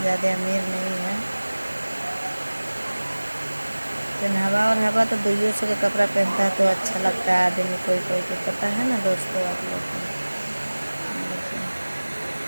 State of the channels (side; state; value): both; inverted; correlation -1.00